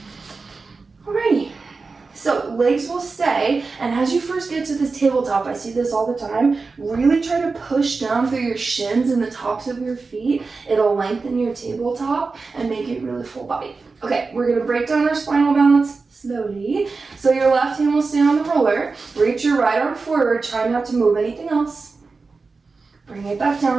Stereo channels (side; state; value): left; quieter; 4.2 dB